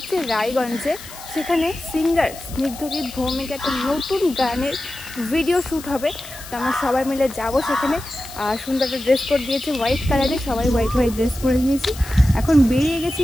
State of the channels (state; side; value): noise; left; hiss, 15 dB below the sound